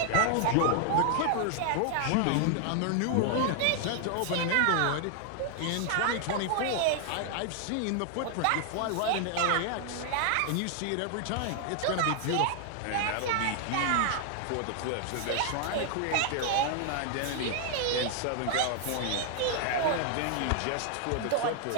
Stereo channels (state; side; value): different; both; correlation 0.00